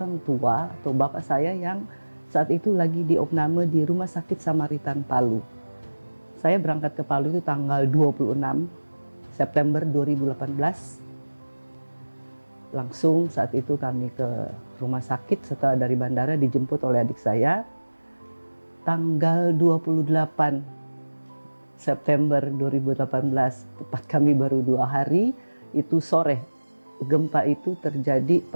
tua atau bapak saya yang saat itu lagi diopname di Rumah Sakit Samaritan Palu. Saya berangkat ke Palu itu tanggal 26 September 2018. Langsung saat itu kami ke rumah sakit setelah dari bandara dijemput oleh adik saya. Tanggal 28 September 2018, tepat kami baru 2 hari. Itu sore, gempa itu terjadi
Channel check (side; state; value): both; inverted; correlation -1.00